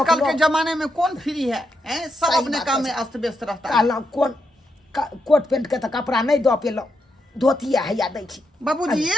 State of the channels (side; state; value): both; normal; correlation 0.83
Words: के जमाने में कौन फ्री है सब सही अपने बात काम है। में अस्त व्यस्त रहता है कहलहुँ कोन कोट पेंट के तो कपड़ा नहीं दो पेलहुँ धोती हैया दै छी बाबूजी